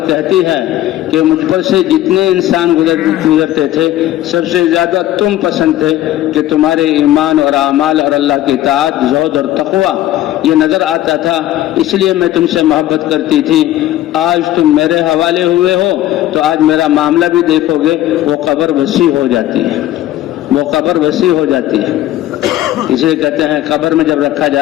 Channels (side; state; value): right; quieter; 14.0 dB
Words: کہتی ہے کہ مجھ پر سے جتنے انسان گزرتے تھے سب سے زیادہ تم پسند تھے، کہ تمہارے ایمان اور اعمال اور اللہ کی اطاعت، زہد اور تقوی یہ نظر آتا تھا، اس لیے میں تم سے محبت کرتی تھی۔ آج تم میرے حوالے ہوئے ہو تو آج میرا معاملہ بھی دیکھو گے، وہ قبر وسیع ہو جاتی ہے، وہ قبر وسیع ہو جاتی ہے۔ اس لیے کہتے ہیں قبر میں جب رکھا